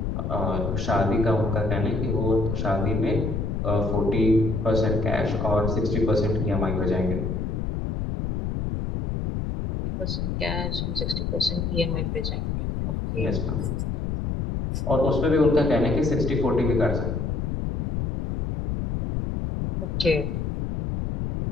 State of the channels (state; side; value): noise; left; rumble, 1 dB below the sound